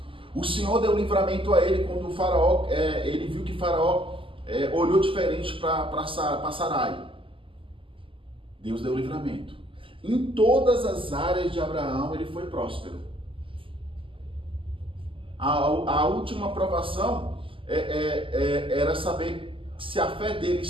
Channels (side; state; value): left; late; 0.25 ms